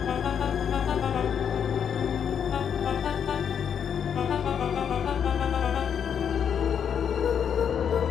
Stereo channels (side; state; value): right; quieter; 7.9 dB